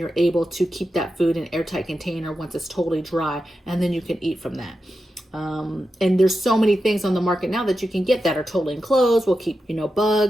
able to keep that food in an airtight container once it's totally dry, and then you can eat from that. And there's so many things on the market now that you can get that are totally enclosed, will keep,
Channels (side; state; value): both; normal; correlation 0.90